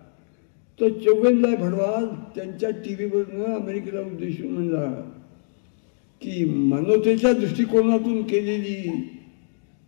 तो चौगेनलाल भडवाल त्यांच्या टीव्हीवरनं अमेरिकेला उद्देशून म्हणला की मानवतेच्या दृष्टिकोनातून केलेली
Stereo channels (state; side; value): silent; right; digital silence